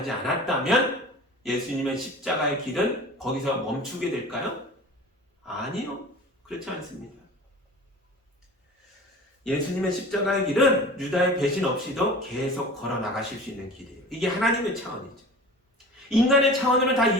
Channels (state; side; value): normal; both; correlation 0.39